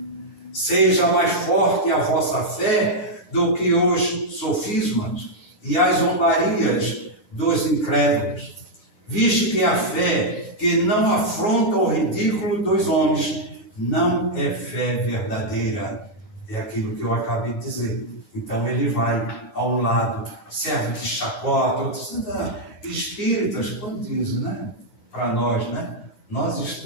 Seja mais forte a vossa fé do que os sofismas e as zombarias dos incrédulos, visto que a fé que não afronta o ridículo dos homens não é fé verdadeira. É aquilo que eu acabei de dizer. Então ele vai ao lado, serve de chacota, espíritas, como dizem, né? Para nós, né? Nós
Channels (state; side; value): late; right; 10 ms